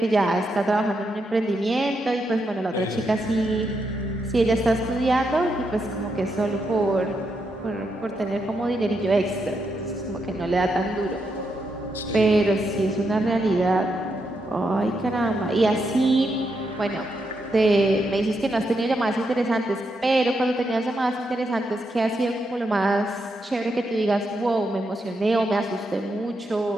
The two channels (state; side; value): normal; both; correlation 0.82